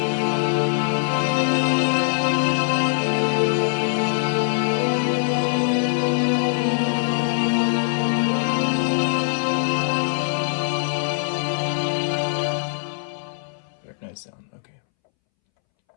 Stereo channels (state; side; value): silent; right; 64 dB below the other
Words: Very nice sound. Okay.